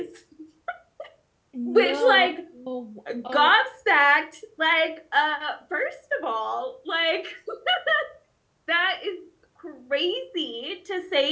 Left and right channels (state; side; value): identical; both; correlation 1.00